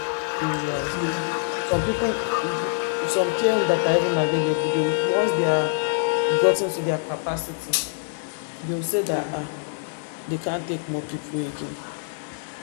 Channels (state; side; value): silent; right; digital silence